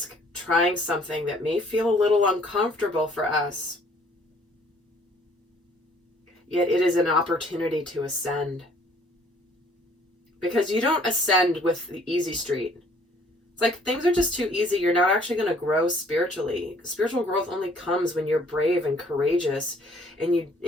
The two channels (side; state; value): both; normal; correlation 0.59